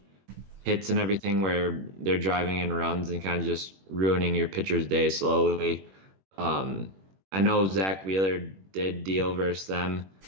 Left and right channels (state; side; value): late; left; 21 ms